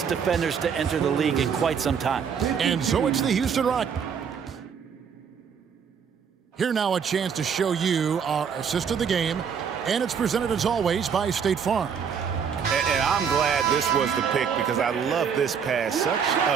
defenders to enter the league in quite some time. And so it's the Houston Rockets. Here now a chance to show you our assist of the game. And it's presented as always by State Farm. And I'm glad this was the pick because I love this pass. Such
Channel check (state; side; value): quieter; left; 7.0 dB